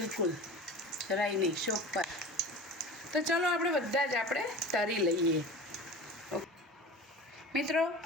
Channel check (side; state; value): both; normal; correlation 0.35